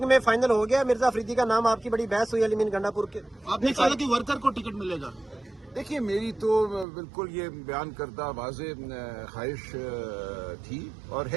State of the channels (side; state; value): left; drops out; at 6.9 s